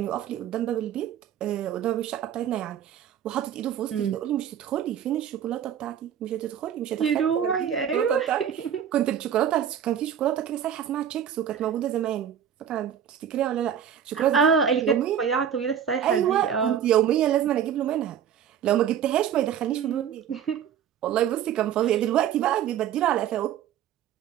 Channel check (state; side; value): quieter; left; 9.1 dB